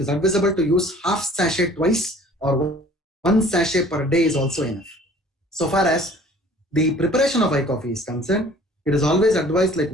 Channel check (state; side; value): normal; both; correlation 0.51